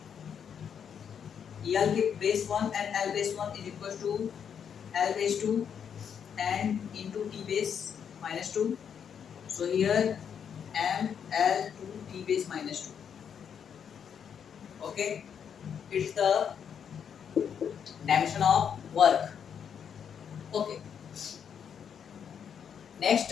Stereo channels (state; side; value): quieter; right; 7.8 dB